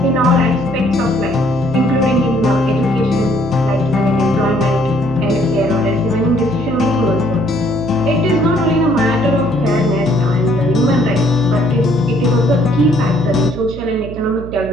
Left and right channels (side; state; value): right; noise; hum, 12 dB below the sound